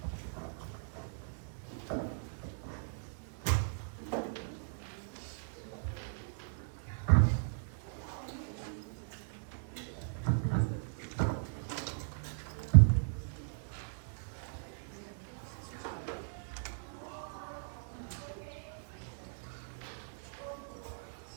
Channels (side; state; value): left; silent; digital silence